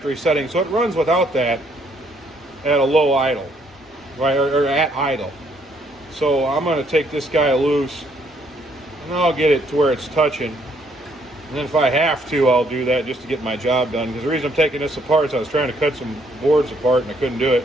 setting, so it runs without that at a low idle, right, or at idle. So I'm going to take this guy loose, and I'll get it to where it's touching. And then if I have to, I'll do that just to get my job done. Because the reason I'm taking this apart is I was trying to cut some boards apart, and I couldn't do it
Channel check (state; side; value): normal; both; correlation 0.69